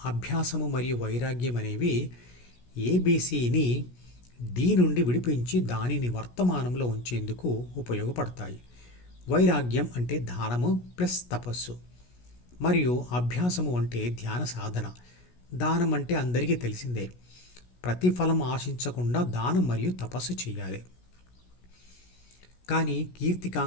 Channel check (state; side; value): late; right; 17 ms